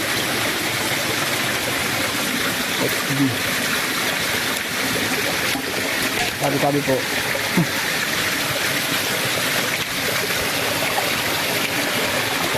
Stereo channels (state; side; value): identical; both; correlation 1.00